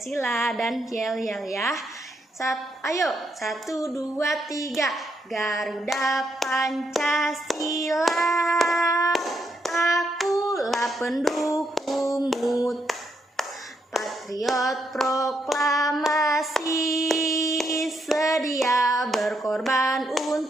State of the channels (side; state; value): both; normal; correlation 0.78